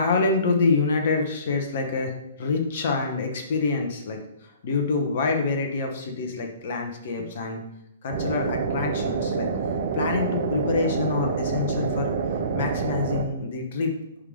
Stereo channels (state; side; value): inverted; both; correlation -0.50